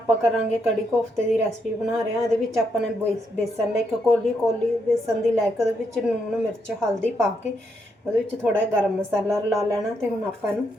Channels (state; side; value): normal; both; correlation 0.78